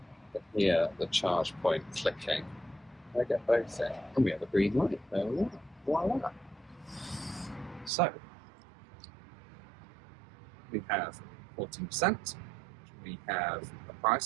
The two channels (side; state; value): left; drops out; at 7.9 s